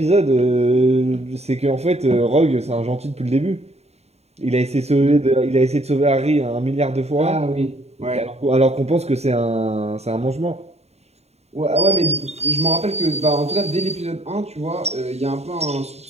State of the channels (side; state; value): left; late; 0.31 ms